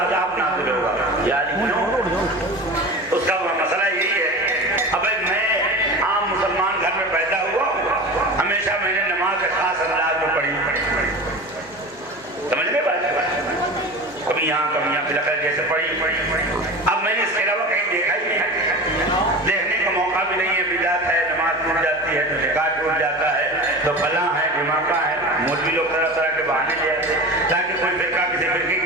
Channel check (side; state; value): both; normal; correlation 0.32